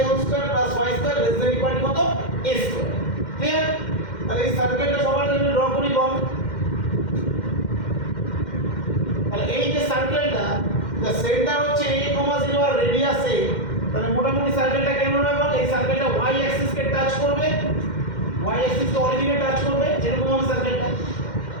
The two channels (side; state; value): right; late; 2.1 ms